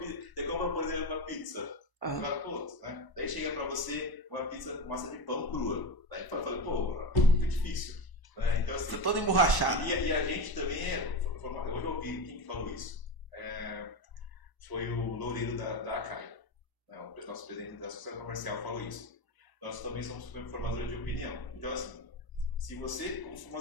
por exemplo, uma pizza. Né? Daí chega pra você uma pizza com massa de pão crua. Daí eu falei, pô, muito difícil. Né? Então, assim, tô todo emborrachado. E a gente também hoje eu ouvi quem que falou isso. Foi o Loureiro da ACAI. Né? O nosso presidente da Associação Comercial falou isso. Nós também somos formadores de opinião. Então, assim, se você, como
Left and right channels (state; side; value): late; right; 1.0 ms